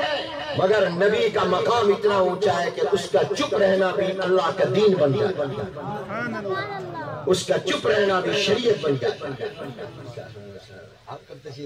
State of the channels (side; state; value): both; identical; correlation 1.00